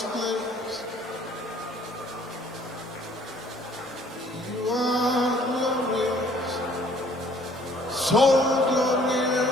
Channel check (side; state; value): both; normal; correlation 0.58